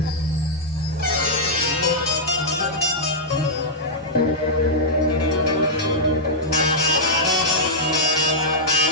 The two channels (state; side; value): normal; both; correlation -0.09